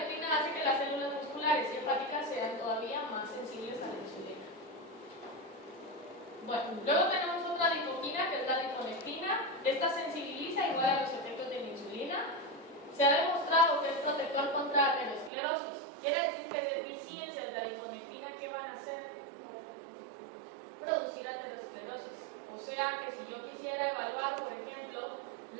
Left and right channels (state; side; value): drops out; left; at 15.3 s